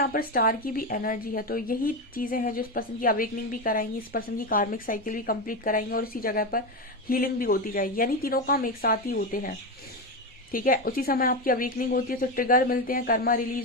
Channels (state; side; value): normal; both; correlation 0.14